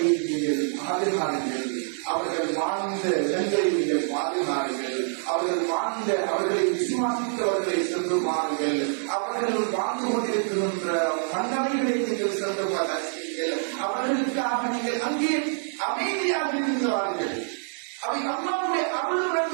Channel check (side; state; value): left; silent; digital silence